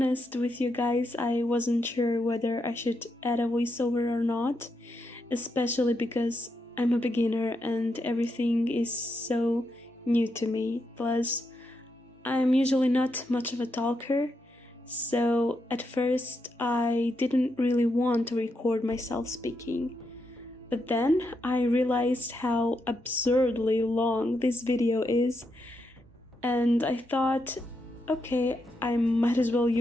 with you guys, I wasn't sure whether I should add a voiceover or not, especially because I'm a beginner and everything is so new to me. Plus, I'm usually not much of a talker, so at first I didn't really want to record myself speaking. But then I realized how absurdly long this video is, and I thought, okay, I might as well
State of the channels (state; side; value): normal; both; correlation 0.82